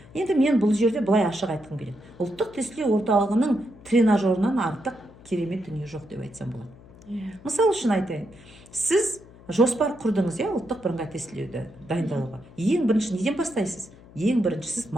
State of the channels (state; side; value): noise; left; hum, 22 dB below the sound